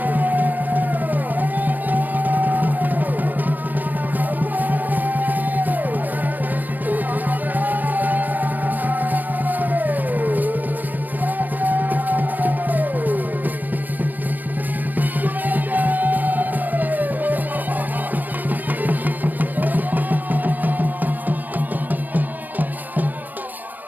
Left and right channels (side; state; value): left; late; 0.088 ms